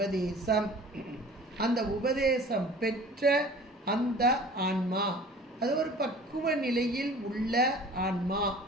அந்த உபதேசம் பெற்ற அந்த ஆன்மா அது ஒரு பக்குவ நிலையில் உள்ள ஆன்மா.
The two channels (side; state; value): both; normal; correlation 0.45